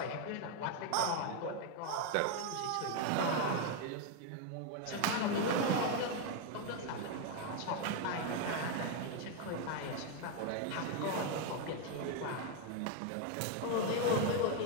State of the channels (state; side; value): different; both; correlation 0.01